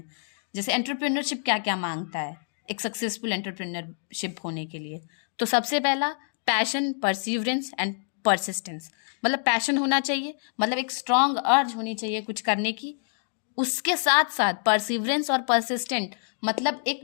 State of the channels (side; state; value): right; silent; digital silence